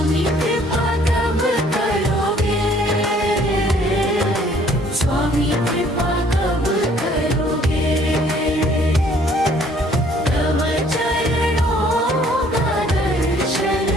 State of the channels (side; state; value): both; normal; correlation 0.59